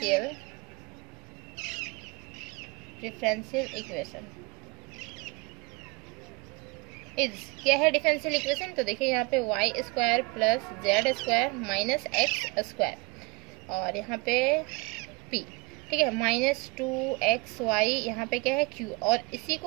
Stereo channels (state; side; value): quieter; left; 26.3 dB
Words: equation is, क्या है डिफरेंशियल इक्वेशन, तो देखिए यहाँ पे y² plus z² minus x², और यहाँ पे p, ठीक है, -2xy यहाँ पे क्या है q, और इसी